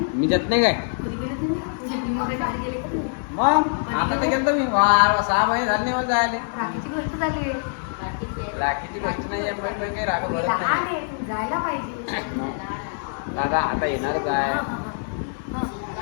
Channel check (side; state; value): right; silent; digital silence